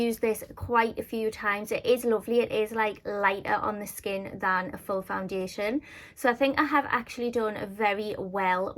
this quite a few times. It is lovely. It is like lighter on the skin than a full foundation. So I think I have actually done very well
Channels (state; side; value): identical; both; correlation 1.00